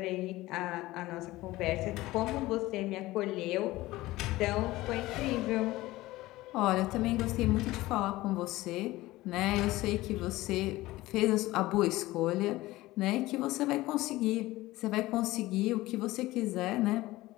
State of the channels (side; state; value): right; quieter; 18.2 dB